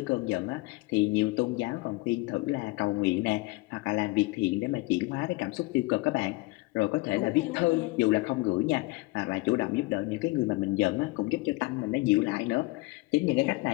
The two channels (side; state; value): right; quieter; 22.5 dB